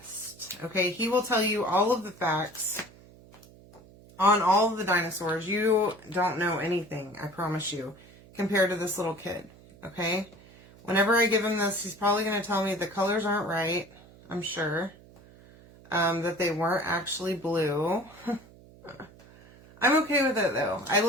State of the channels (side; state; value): right; noise; hum, 23 dB below the sound